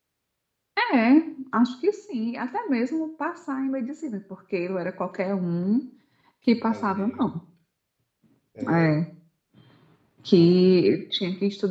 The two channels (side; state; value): both; identical; correlation 1.00